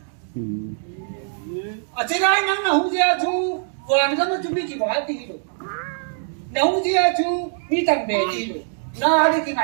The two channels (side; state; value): left; silent; digital silence